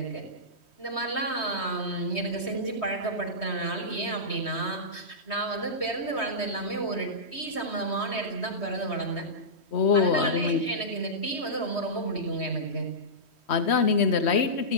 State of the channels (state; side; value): late; right; 3.1 ms